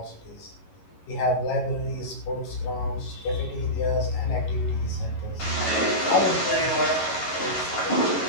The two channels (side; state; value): right; late; 11 ms